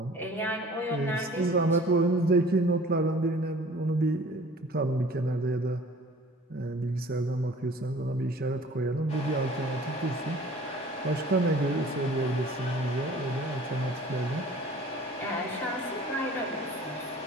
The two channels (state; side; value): normal; both; correlation 0.48